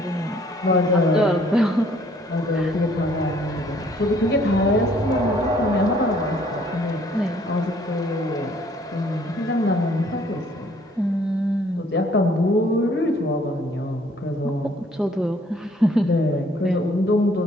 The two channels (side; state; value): both; normal; correlation 0.61